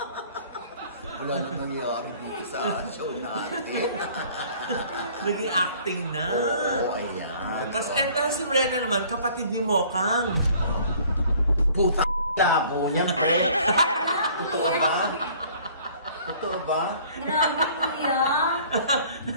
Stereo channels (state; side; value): inverted; both; correlation -0.54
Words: Wala na nangyayari dito sa show natin. Naging acting na. Oo, ayan. Tapos si Brenna naman, kapatid ni Mokang. Puta labo niyan. Totoo ba? Totoo ba? Grabe, kuya.